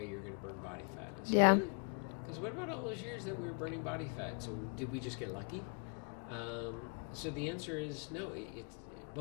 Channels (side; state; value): right; quieter; 39.9 dB